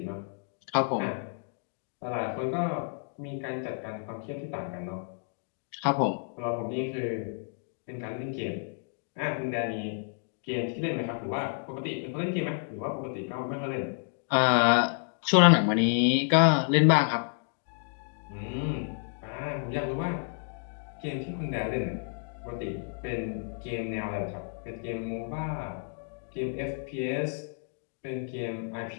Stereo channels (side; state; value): right; silent; 58 dB below the other